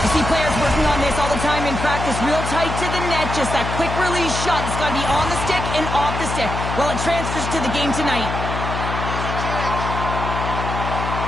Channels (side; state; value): left; noise; hum, 4 dB below the sound